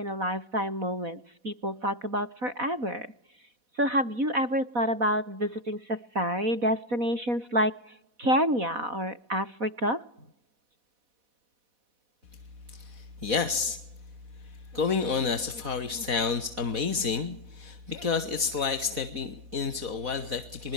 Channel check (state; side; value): late; left; 4.1 ms